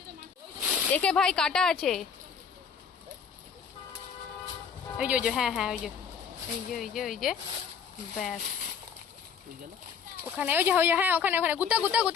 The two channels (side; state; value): right; quieter; 6.8 dB